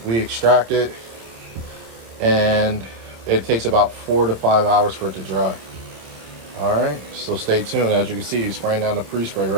extract it, and it takes about 4 to 5 hours for it to dry. All right, so stay tuned. As you can see, he's spraying down the pre-spray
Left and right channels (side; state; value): left; late; 27 ms